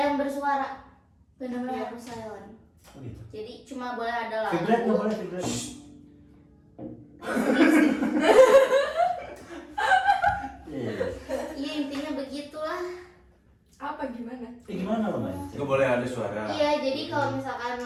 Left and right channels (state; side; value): identical; both; correlation 1.00